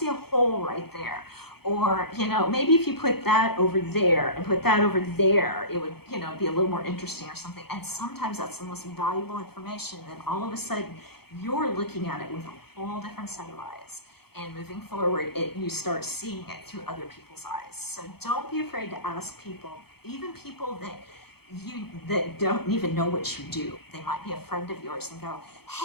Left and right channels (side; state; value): right; late; 0.96 ms